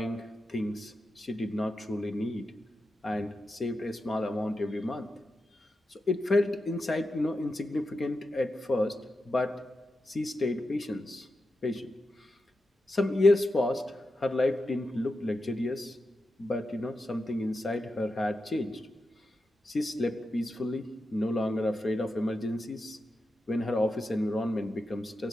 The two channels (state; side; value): normal; both; correlation 0.89